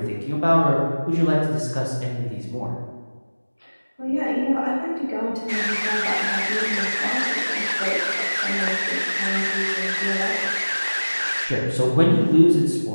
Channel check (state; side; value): inverted; both; correlation -1.00